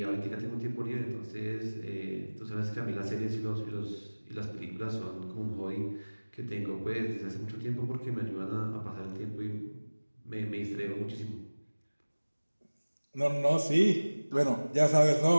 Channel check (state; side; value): inverted; both; correlation -1.00